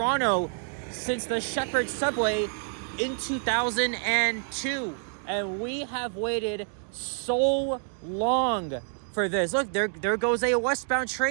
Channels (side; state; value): left; silent; 58 dB below the other